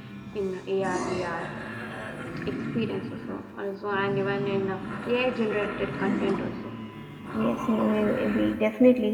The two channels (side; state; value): both; identical; correlation 1.00